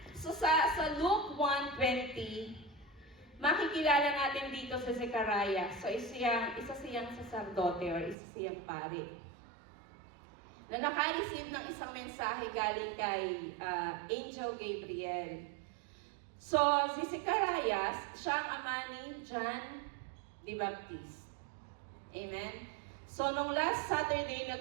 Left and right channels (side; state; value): left; drops out; at 8.2 s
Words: So sa Luke 1:20, makikilala natin dito sa Zechariah. So, isa siyang saserdote or isa siyang pari. Na naka-receive ng isang mensahe galing kay Angel Gabriel. So, si Zechariah, siya ang ama ni John the Baptist. Amen? So, nung last Saturday,